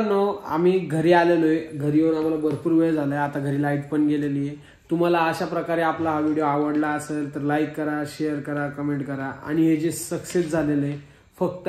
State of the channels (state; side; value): identical; both; correlation 1.00